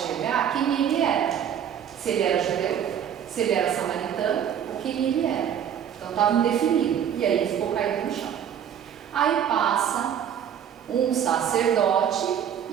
quem ele era. Se ele era judeu, se ele era samaritano, ou quem ele era. Então estava indefinido. E aí ele ficou caído no chão. Aí passa um sacerdote,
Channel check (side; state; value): left; quieter; 9.0 dB